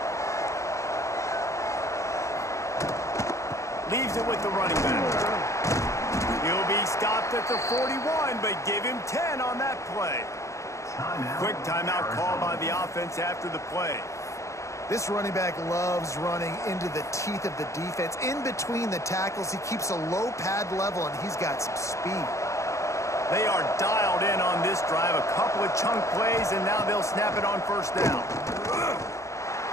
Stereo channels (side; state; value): right; late; 0.15 ms